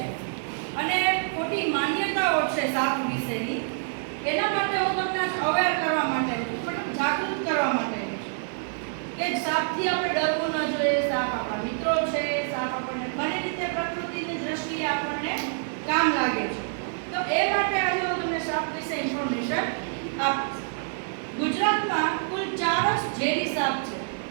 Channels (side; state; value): left; silent; 60 dB below the other